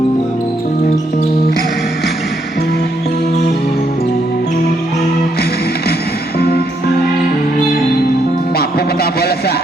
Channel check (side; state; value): both; normal; correlation 0.75